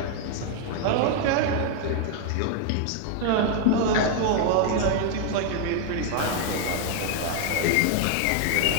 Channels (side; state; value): both; different; correlation 0.00